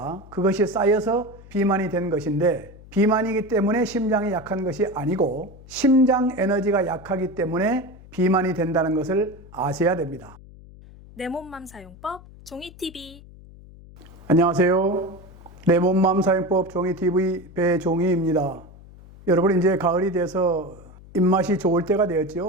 그것이 쌓여서 비만이 된 것인데, 비만이기 때문에 심장이 약한 것이 아니고 심장 에너지가 약하기 때문에 비만이 된다는 것을 아셔야 됩니다. 내 몸맘 사용법 종이TV. 안녕하세요. 내 몸맘 사용법 종이TV 배종희입니다. 여러분, 이제 가을이 돼서 입맛이 좋을 때가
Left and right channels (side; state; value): left; noise; hum, 20 dB below the sound